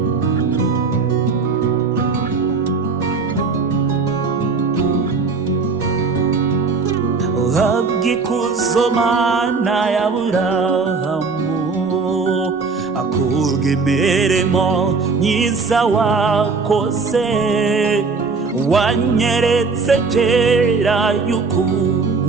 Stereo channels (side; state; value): left; quieter; 4.5 dB